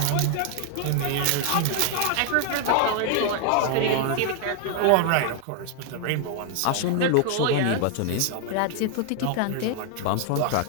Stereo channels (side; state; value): both; different; correlation 0.00